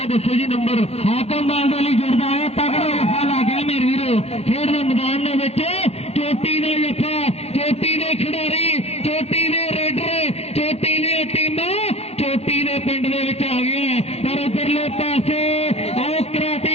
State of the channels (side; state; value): right; late; 0.30 ms